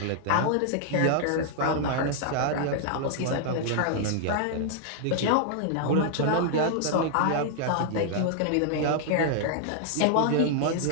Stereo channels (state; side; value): different; both; correlation -0.01